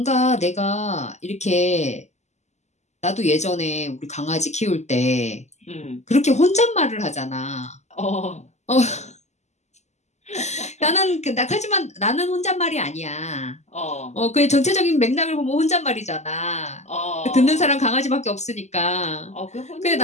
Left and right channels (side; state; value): right; late; 0.33 ms